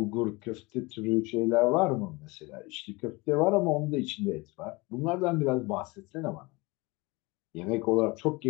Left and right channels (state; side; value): quieter; right; 24.8 dB